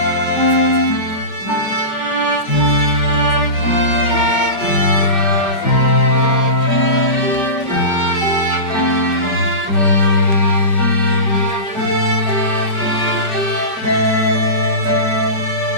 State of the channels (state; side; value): late; right; 5.2 ms